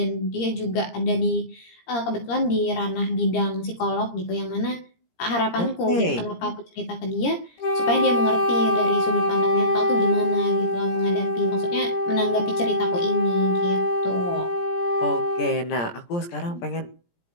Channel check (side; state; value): right; late; 17 ms